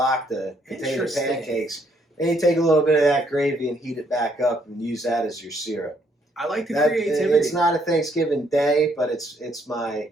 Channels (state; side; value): normal; both; correlation 0.70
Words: potato pancakes, then you take a little bit of that gravy and heat it back up and use that as your syrup. I like the creativity. It's not a Thanksgiving day, but it's